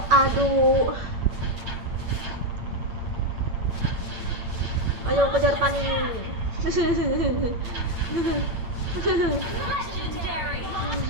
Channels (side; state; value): left; late; 8.8 ms